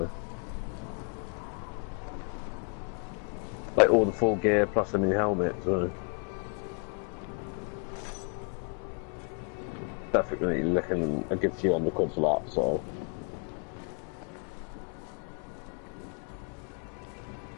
like all the full gear plus a new helmet. So, definitely looking a good few £100 for that. So,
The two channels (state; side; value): quieter; right; 38.7 dB